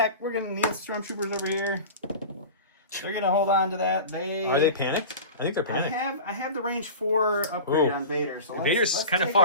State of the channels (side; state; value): both; inverted; correlation -0.33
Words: We're gonna need stormtroopers over here. They're gonna hold on to that. Are they panicked? I think they're panicked. I have the range 4 upgrade on Vader. So Vader's let's kind of take